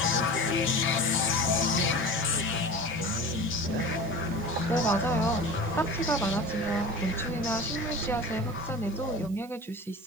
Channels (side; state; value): right; noise; hiss, 24 dB below the sound